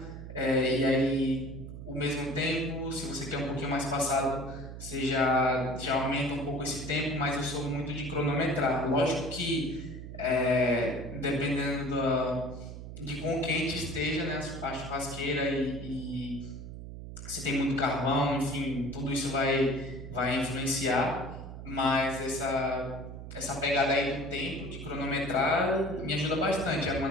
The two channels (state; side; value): noise; right; hum, 10 dB below the sound